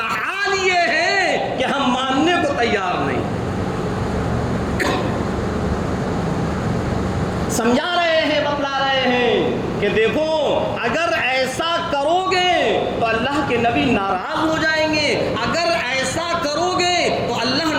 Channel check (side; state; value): both; identical; correlation 1.00